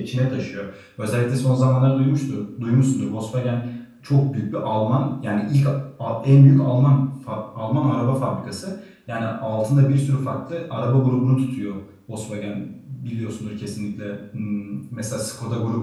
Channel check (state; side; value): identical; both; correlation 1.00